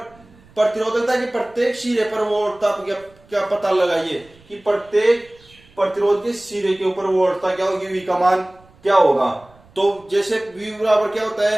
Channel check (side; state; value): right; noise; rumble, 28 dB below the sound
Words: के प्रत्येक सिरे पर वोल्टता क्या पता लगाइए कि प्रत्येक प्रतिरोध के सिरे के ऊपर वोल्टता क्या होगी, V का मान क्या होगा। तो जैसे V बराबर क्या होता